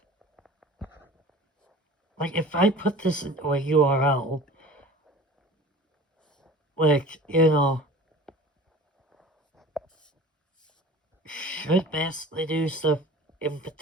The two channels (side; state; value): both; normal; correlation 0.41